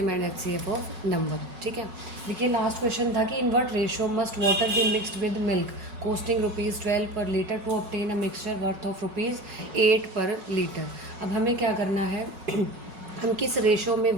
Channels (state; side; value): late; left; 5.4 ms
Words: and HCF of number. ठीक है, देखिए लास्ट क्वेश्चन था कि in what ratio must water be mixed with milk costing ₹12 per litre to obtain a mixture worth of ₹8 per litre. अब हमें क्या करना है हम किस रेशो में